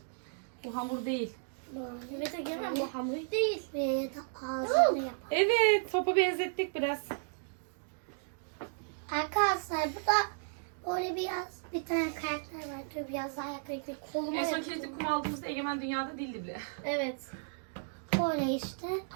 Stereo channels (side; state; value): left; silent; digital silence